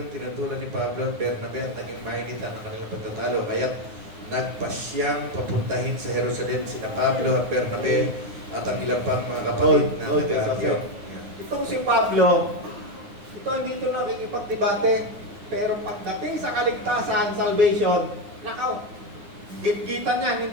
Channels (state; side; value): late; left; 9.5 ms